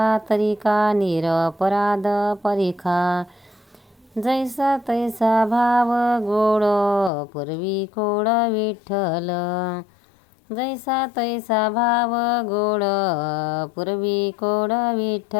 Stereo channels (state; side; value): drops out; right; at 7.1 s